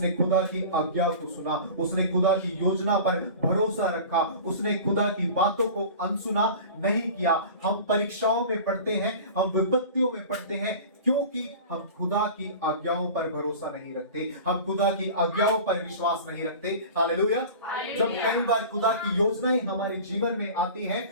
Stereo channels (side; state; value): both; inverted; correlation -0.37